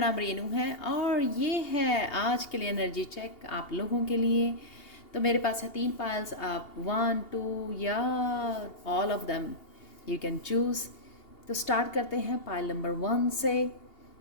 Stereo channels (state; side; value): late; right; 2.8 ms